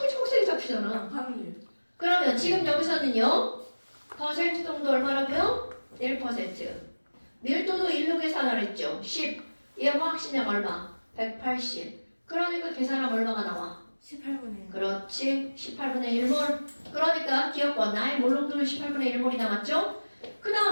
초록색이 잡히잖아. 확률. 그러면 지금 여기서는요. 퍼센트 정도 얼마라고요? 1%. 밀도도 1로 계산을 했죠. 10. 얘 화학식량 얼마? 180. 그러니까 계산하면 얼마가 나와? 18분의 그렇지. 18분의 1몰. 그러니까 기억번 나의 몰롱도는 18분의 1몰이 남았죠. 그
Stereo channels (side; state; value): both; inverted; correlation -1.00